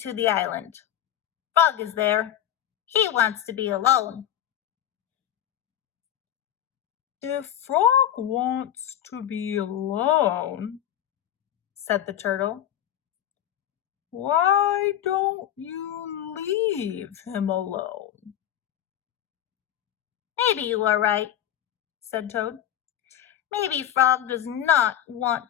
the island. Frog is there. He wants to be alone." "If Frog wants to be alone," said the turtle, "why don't you leave him alone?" "Maybe you are right," said Toad. "Maybe Frog does not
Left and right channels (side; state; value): right; quieter; 10.8 dB